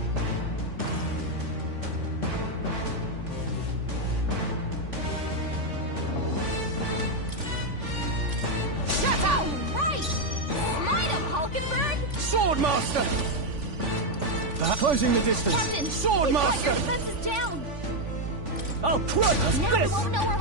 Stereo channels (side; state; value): left; late; 3.5 ms